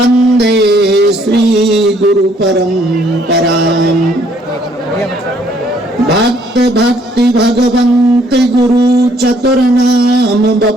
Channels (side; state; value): both; normal; correlation 0.65